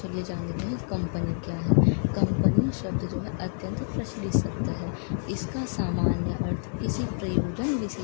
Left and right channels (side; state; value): right; silent; 60 dB below the other